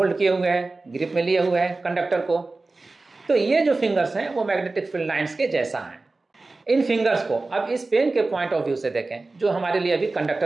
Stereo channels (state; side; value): quieter; left; 3.4 dB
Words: किए हुए हैं, ग्रिप में लिए हुए हैं कंडक्टर को। तो ये जो फिंगर्स हैं वो मैग्नेटिक फील्ड लाइंस के जैसा हैं। इन फिंगर्स को अब इस पेन के पॉइंट ऑफ व्यू से देखें, जो हमारे लिए अभी